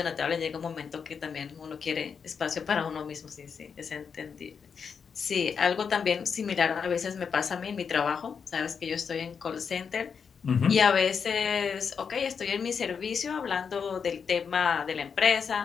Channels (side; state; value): right; quieter; 6.3 dB